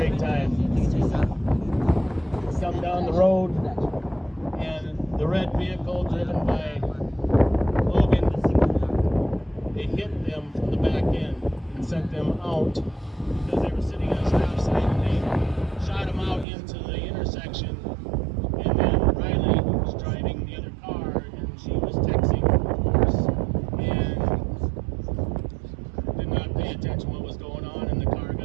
time. Some down the road, and the red vehicle driven by Logan, they hit them from the back end and sent them out because they were sitting on a stop sign, and they shot them out into the intersection. And then Riley was driving the other car, and she was texting, of course, and did not pay attention to what was going on, and the car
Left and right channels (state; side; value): drops out; left; at 16.4 s